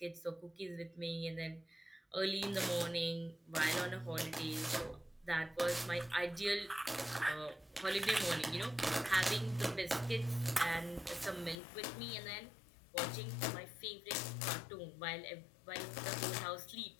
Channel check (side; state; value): right; drops out; at 11.6 s